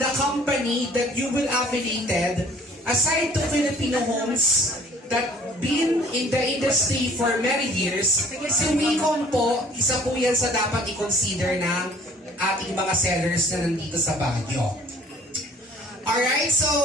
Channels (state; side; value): normal; both; correlation 0.54